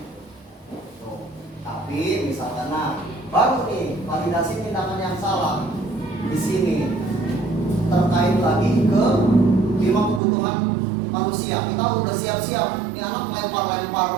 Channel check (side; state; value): left; drops out; at 10.2 s